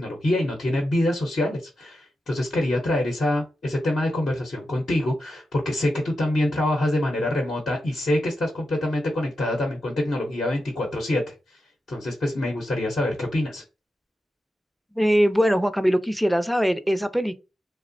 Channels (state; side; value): normal; both; correlation 0.90